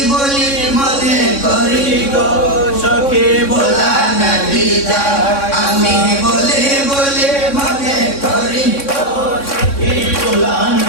বলি মনে করি গো সখী ভোলা নাহি যায় আমি বলি বলি মনে করি গো সখী ভোলা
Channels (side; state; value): right; late; 3.6 ms